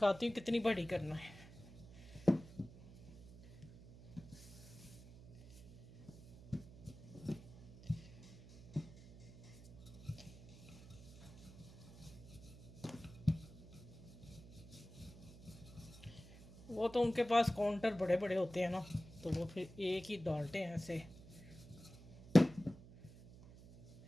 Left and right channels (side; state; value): right; noise; hum, 18 dB below the sound